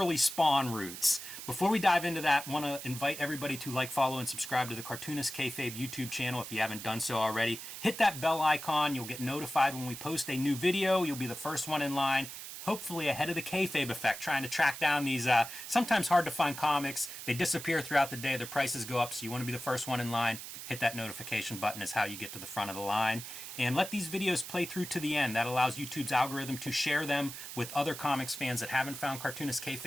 Spawn roots. Before we dive into that, I want to invite everybody to like, follow, and subscribe to the Cartoonist Kayfabe YouTube channel if you haven't done so already. Hit that bell icon. You'll get notified when we post a new video. You'll be the first one in line, hopefully ahead of the Kayfabe effect, trying to track down these sometimes hard to find comics. They disappear throughout the day. Their prices go up, so you want to be the first one in line. Hit that notification button is how you get to the front of the line. And let these videos play through to the end. That allows YouTube's algorithm to share them with other comics fans that haven't found Cartoonist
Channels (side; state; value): right; noise; hiss, 10 dB below the sound